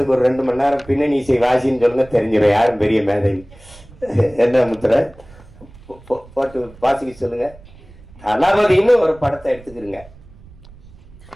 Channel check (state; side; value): noise; right; rumble, 22 dB below the sound